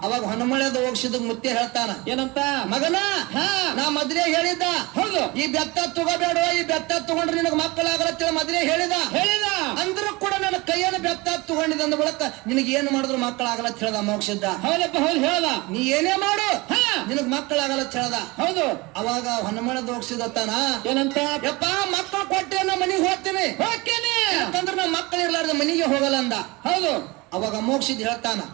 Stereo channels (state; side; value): quieter; left; 23.7 dB